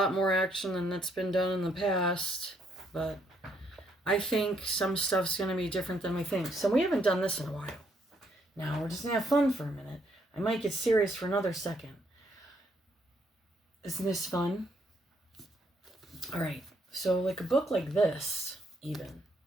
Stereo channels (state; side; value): normal; both; correlation 0.72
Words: more action than that's been done in the past, but I think some stuff's going to be different than we think. So we haven't done this in a while. Now we're just going to have fun for a minute. I might get serious for another second. Isn't this fun? All right. So like a book like this, even,